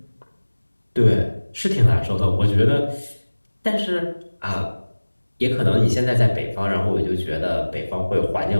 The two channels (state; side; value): inverted; both; correlation -1.00